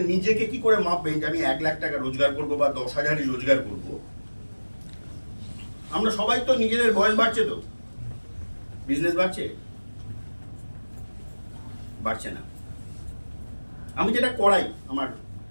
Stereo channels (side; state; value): both; inverted; correlation -1.00